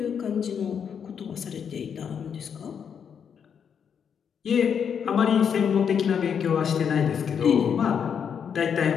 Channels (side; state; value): right; quieter; 7.4 dB